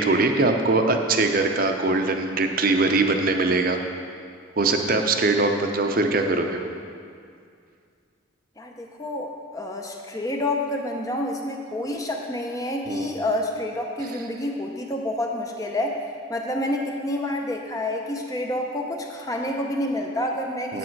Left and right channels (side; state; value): both; normal; correlation 0.33